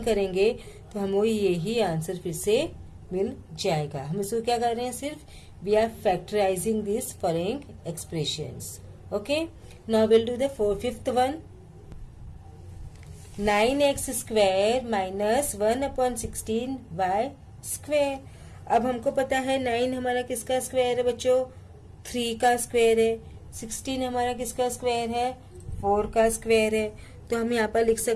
करेंगे तो हमें यही आंसर फिर से मिल जाएगा। हम इसको क्या कर रहे हैं, सिर्फ we are factorising this following expressions. Okay, now we'll do the fifth one. 9x square minus 1/16y square। अब हमको पता है 9 हमारा किसका स्क्वायर है बच्चों, 3 का स्क्वायर है। 16 हमारा किसका स्क्वायर है, 4 का स्क्वायर है। तो हम यहाँ पर लिख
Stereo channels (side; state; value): both; identical; correlation 1.00